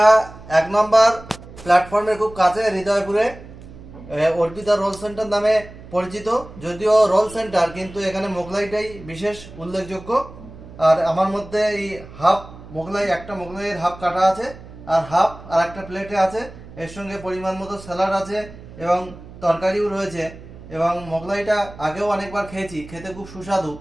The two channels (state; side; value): noise; right; hum, 17 dB below the sound